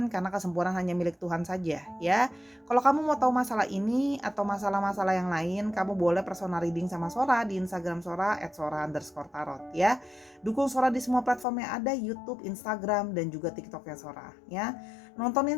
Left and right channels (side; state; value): right; drops out; at 11.5 s